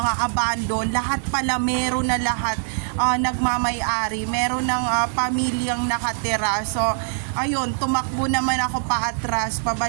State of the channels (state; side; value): silent; left; digital silence